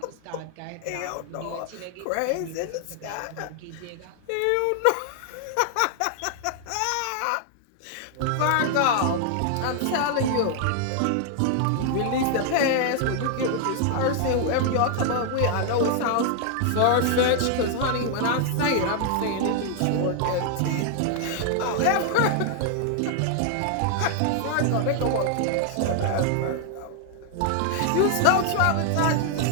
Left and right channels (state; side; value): different; both; correlation 0.00